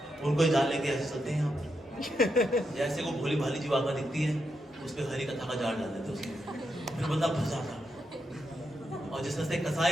उनको जाल लेके ऐसे चलते हैं यहाँ जैसे को भोली भाली जीवात्मा दिखती है, उस पर हरि कथा का जाल डाल देते उसमें, फिर बंदा फंस जाता। और जिस तरह से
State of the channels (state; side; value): normal; both; correlation 0.84